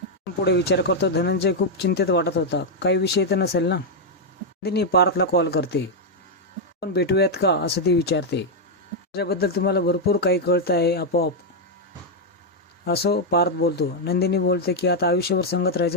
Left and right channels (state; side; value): normal; both; correlation 0.00